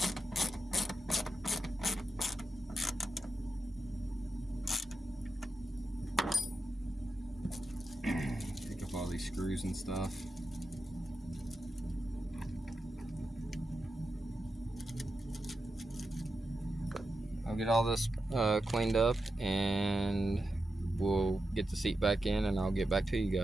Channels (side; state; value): both; normal; correlation 0.89